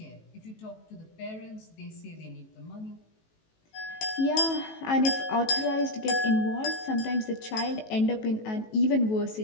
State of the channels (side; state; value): right; late; 18 ms